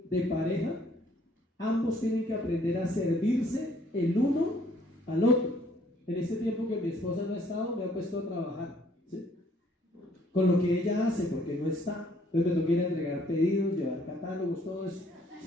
de pareja, ambos tienen que aprender a servirse el uno al otro. En este tiempo que mi esposa no ha estado, me ha puesto a trabajar, ¿sí? Con lo que ella hace, porque no está. Entonces me toca ir a entregar pedidos, llevar catálogos, todo eso,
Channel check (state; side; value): normal; both; correlation 0.63